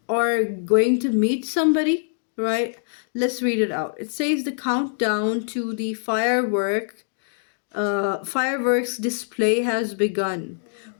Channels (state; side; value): silent; right; digital silence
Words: or going to meet somebody, right? Let's read it out. It says the countdown to the fireworks display has begun.